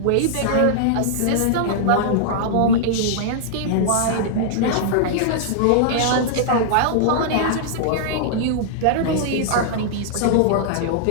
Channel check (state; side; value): different; both; correlation -0.01